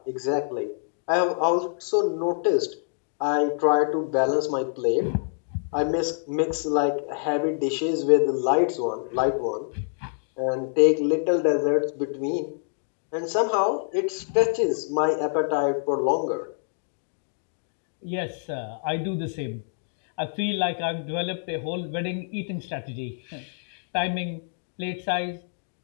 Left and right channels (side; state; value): right; silent; digital silence